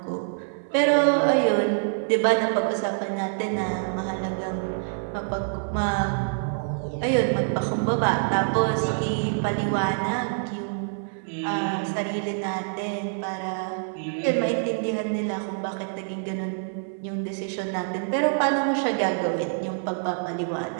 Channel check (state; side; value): silent; left; 61 dB below the other